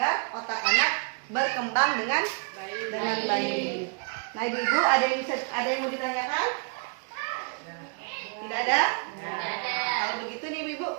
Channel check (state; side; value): quieter; left; 36.0 dB